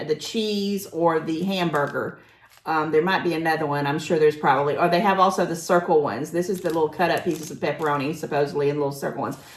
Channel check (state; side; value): identical; both; correlation 1.00